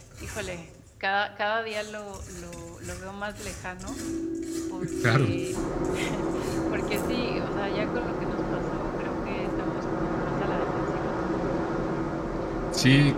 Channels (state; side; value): identical; both; correlation 1.00